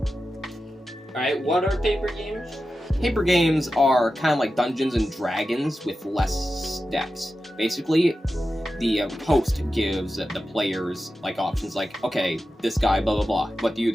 Alright, what are paper games? Paper games are kind of like Dungeons and Dragons with less steps. Basically, the host gives the players like options like, okay, this guy, blah blah blah, what do you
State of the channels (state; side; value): normal; both; correlation 0.92